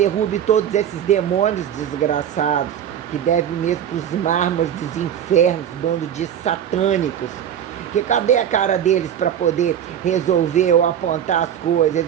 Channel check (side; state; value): left; quieter; 9.5 dB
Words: todos esses demônios desgraçados, que devem mesmo para os mármores dos infernos, bando de satânicos. Que cadê a cara deles para poder resolver ou apontar as coisas?